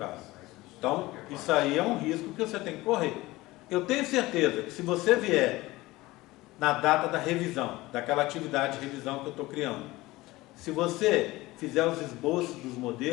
Então, isso aí é um risco que você tem que correr. Eu tenho certeza que se você vier na data da revisão, daquela atividade de revisão que eu estou criando, se você fizer os esboços dos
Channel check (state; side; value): quieter; right; 19.3 dB